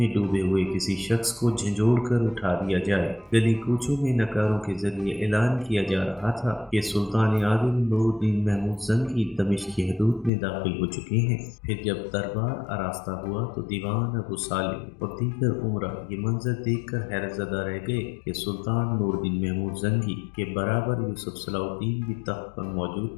ڈوبے ہوئے کسی شخص کو جھنجھوڑ کر اٹھا دیا جائے۔ گلی کوچوں میں نکاروں کے ذریعے اعلان کیا جا رہا تھا کہ سلطان عادل نور الدین محمود زنگی دمشق کی حدود میں داخل ہو چکے ہیں۔ پھر جب دربار آراستہ ہوا تو دیوان ابو سالم اور دیگر عمرہ یہ منظر دیکھ کر حیرت زدہ رہ گئے کہ سلطان نور الدین محمود زنگی کے برابر یوسف صلاح الدین بھی تخت پر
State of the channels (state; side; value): drops out; right; at 10.3 s